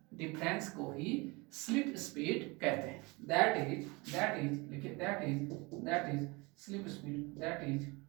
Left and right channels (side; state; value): left; quieter; 26.1 dB